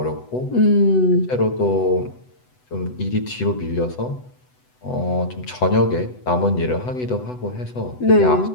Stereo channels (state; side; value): late; right; 8.0 ms